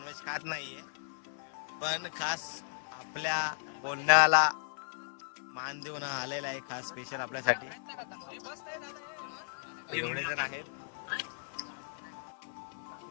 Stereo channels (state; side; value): silent; right; 54 dB below the other